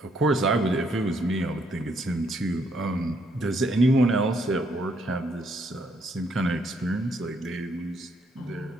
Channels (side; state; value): both; normal; correlation 0.71